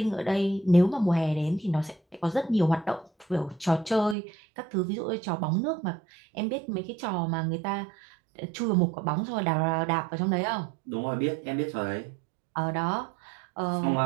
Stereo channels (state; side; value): drops out; left; at 4.2 s